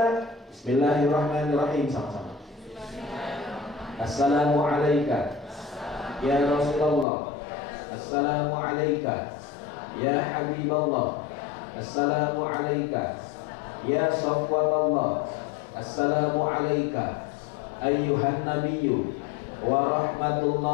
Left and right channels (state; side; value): drops out; right; at 7.1 s